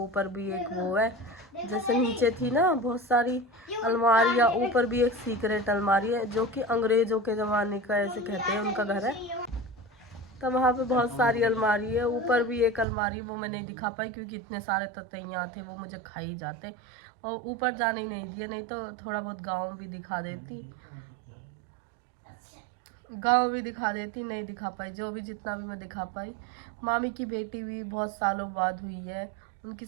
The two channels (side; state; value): left; drops out; at 12.9 s